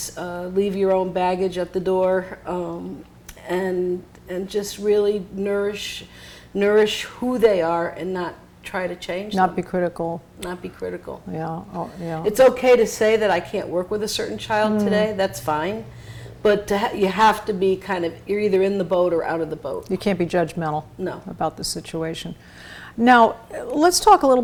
leave your own baggage at the door, and just really nourish who they are and not try to change them. Not be critical. Not be critical. Yeah. Oh, yeah. It's okay to say that I can't work with a certain child today. That's fine. But you have to be you're either in the boat or out of the boat. You can't be judgmental No. about the situation. Now, let's talk a little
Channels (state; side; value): identical; both; correlation 1.00